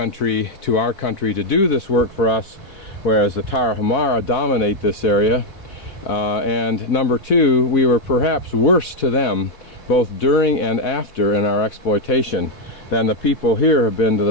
to our country to do this work for us, whereas the Tarahumara dominate this area. And number two, we were perhaps worse to them, both during and after in our exploitation, than the people here have been to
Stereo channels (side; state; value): right; late; 4.1 ms